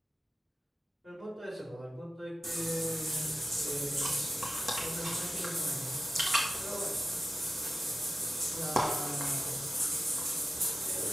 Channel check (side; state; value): both; normal; correlation 0.94